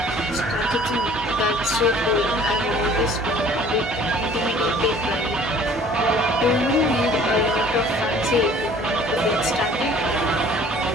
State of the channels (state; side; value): normal; both; correlation 0.51